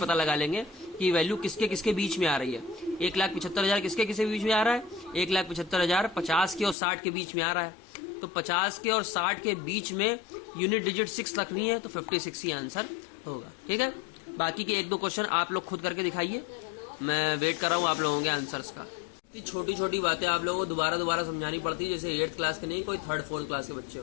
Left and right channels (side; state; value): right; drops out; at 6.8 s